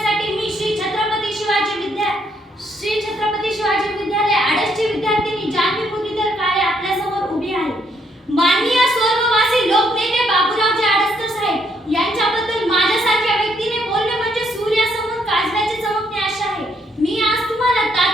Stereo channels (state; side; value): normal; both; correlation 0.72